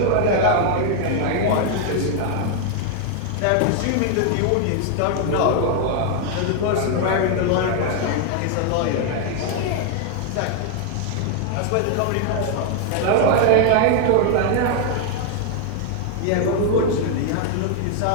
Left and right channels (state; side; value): different; both; correlation 0.00